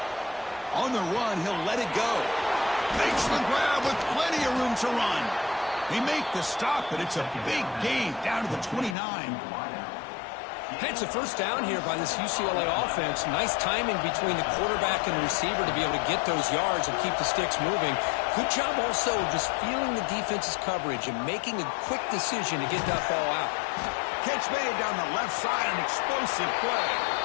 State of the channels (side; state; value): right; drops out; at 9.0 s